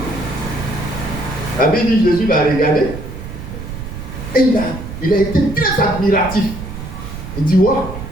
La Bible dit, Jésus l'a regardé et il a été très admiratif. Il dit, waouh,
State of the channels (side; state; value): right; noise; rumble, 9 dB below the sound